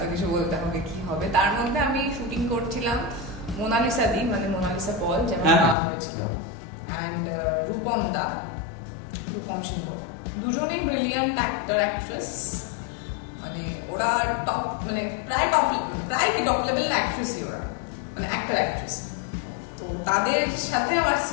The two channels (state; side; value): drops out; right; at 5.8 s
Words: কিছু বলতে হবে, কি হবে। তার মধ্যে আমি শুটিং করছিলাম মোনালিসা দি, মানে মোনালিসা পল যেমন নাম হয়েছিল, অ্যান্ড রূপম সিংহ, দুজনেই ব্রিলিয়ান্ট অ্যাক্টর অ্যাক্ট্রেস। মানে ওরা টপ, মানে প্রায় কি টপ লেভেল অ্যাক্ট্রেসই ওরা, মানে অ্যাক্টর অ্যাক্ট্রেস। তো তাদের সাথে আমার